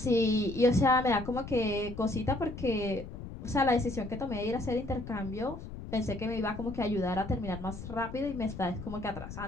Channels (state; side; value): noise; left; rumble, 11 dB below the sound